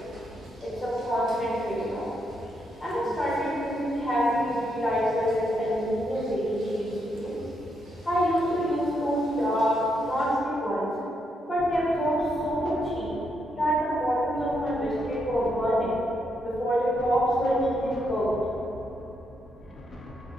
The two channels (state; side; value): normal; both; correlation 0.79